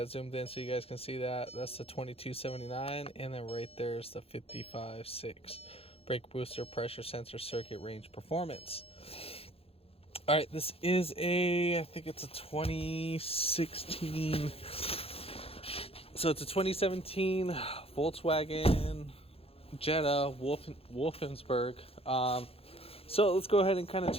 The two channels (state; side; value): late; right; 0.28 ms